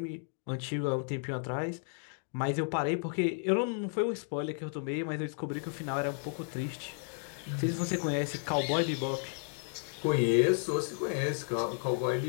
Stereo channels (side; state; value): right; silent; 56 dB below the other